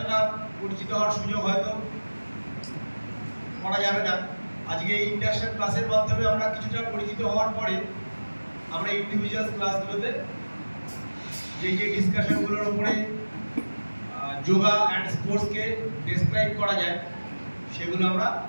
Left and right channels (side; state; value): both; inverted; correlation -1.00